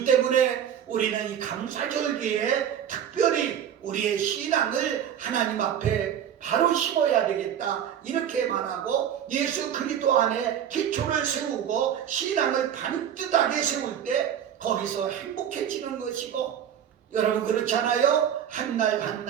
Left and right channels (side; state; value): left; quieter; 9.4 dB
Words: 때문에 우리는 이 감사절기에 특별히 우리의 신앙을 하나님 앞에 바로 심어야 되겠다, 이렇게 말하고, 예수 그리스도 안에 기초를 세우고 신앙을 반듯하게 세울 때 거기서 행복해지는 것이고, 여러분, 그렇잖아요. 한 날 한